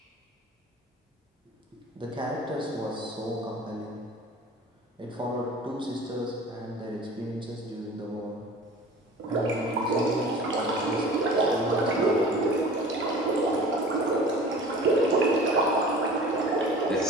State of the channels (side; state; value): both; normal; correlation 0.42